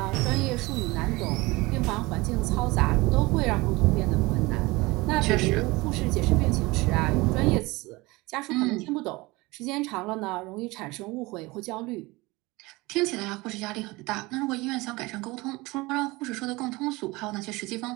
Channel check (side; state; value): left; quieter; 22.5 dB